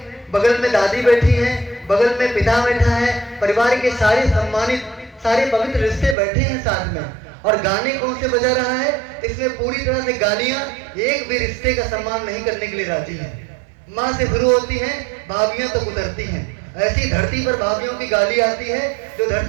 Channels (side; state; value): left; drops out; at 6.2 s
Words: बगल में दादी बैठी है, बगल में पिता बैठा है, परिवार के सारे सम्मानित सारे पवित्र रिश्ते बैठे हैं साथ में, और गाने कौन से बजा रहा है? इसमें पूरी तरह से गालियां, एक भी रिश्ते का सम्मान नहीं करने के लिए राजी है। माँ से शुरू होती हैं, भाभियां तक उतरती हैं। ऐसी धरती पर भाभियों की गाली आती है जो